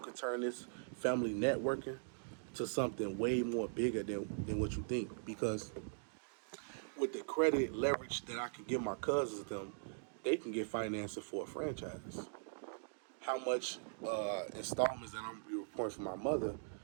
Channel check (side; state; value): left; silent; digital silence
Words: turn this family networking to something way more bigger than what you think because with the credit leverage that I can give my cousins them, they can get financing for a franchise. How much installments that I'm gonna be reporting for my mother,